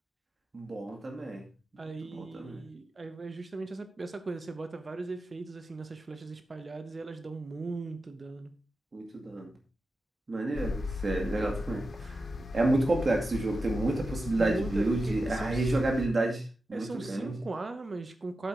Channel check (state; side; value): normal; both; correlation 0.91